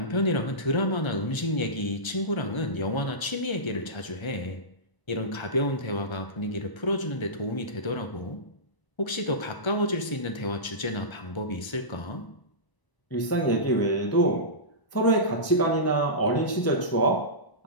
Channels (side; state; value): right; late; 1.0 ms